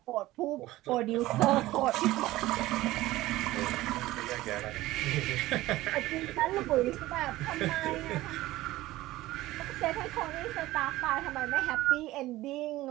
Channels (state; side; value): quieter; left; 17.2 dB